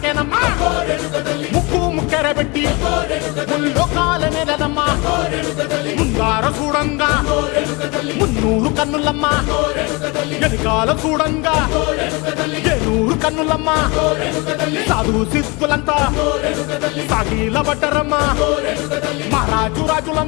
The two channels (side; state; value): right; quieter; 27.3 dB